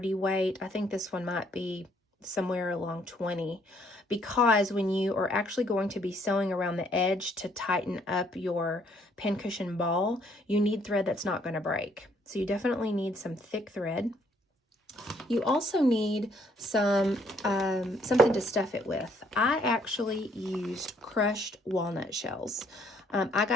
weight. I think this one might be somewhere along 20, because when you are actually going to be sewing around the edge to tighten up your pincushion ball, you need thread that's not going to break. So you definitely need some thick thread. You also need some something to stuff it with. I actually used crushed walnut shells. I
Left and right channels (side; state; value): both; normal; correlation 0.67